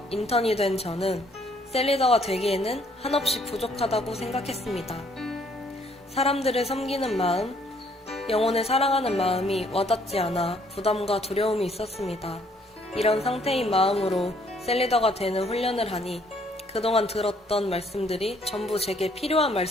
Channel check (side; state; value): both; normal; correlation 0.65